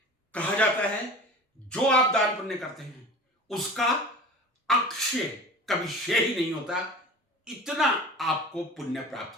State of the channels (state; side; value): normal; both; correlation 0.37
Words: कहा जाता है, जो आप दान पुण्य करते हैं उसका अक्षय कभी क्षय ही नहीं होता, इतना आपको पुण्य